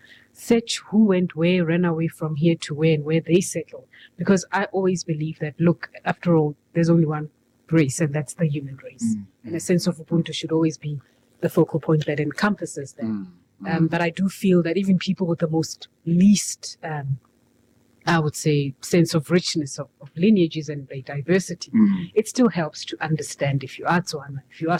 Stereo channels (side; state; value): both; identical; correlation 1.00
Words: search who went where, ran away from here to where, and where they settled. Because I always believe that, look, after all, there's only one race, and that's the human race. And a sense of Ubuntu should always be the focal point that encompasses them. But I do feel that even people with the most least, I would say, sense of richness of lineages and diversity, it still helps to understand if you are Tswana, if you are